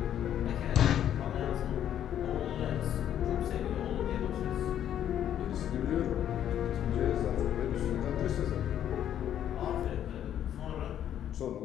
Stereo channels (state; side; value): quieter; right; 10.4 dB